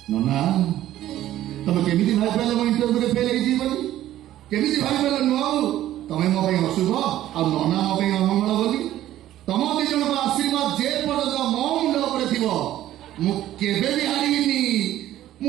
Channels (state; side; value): quieter; left; 13.3 dB